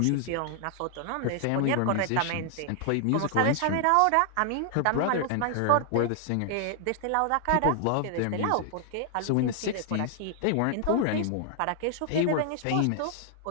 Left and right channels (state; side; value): different; both; correlation 0.00